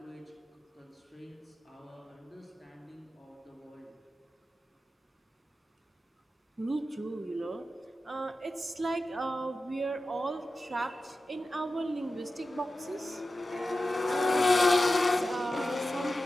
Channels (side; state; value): both; normal; correlation 0.93